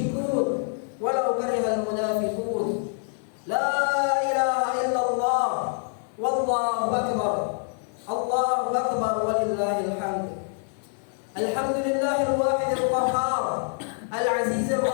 ولو كره المنافقون. لا إله إلا الله والله أكبر. الله أكبر ولله الحمد. الحمد لله الواحد القهار العزيز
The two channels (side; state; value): right; silent; digital silence